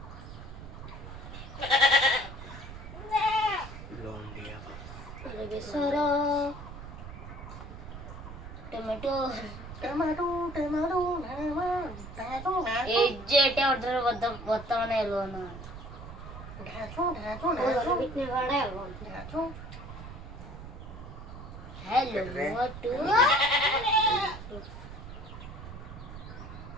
লং দিয়া अरे बेचारा टोमेटो টমেটো টমেটো টমেটো এই যে এটা অর্ডার বর্তমানে এলো না বিটনে ভাড়া এলো হ্যালো মোটু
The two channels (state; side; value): noise; right; rumble, 12 dB below the sound